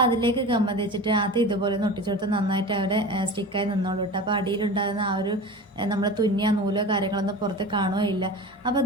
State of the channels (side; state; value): both; normal; correlation 0.33